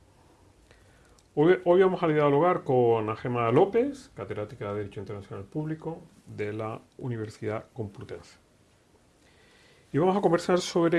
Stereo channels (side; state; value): both; identical; correlation 1.00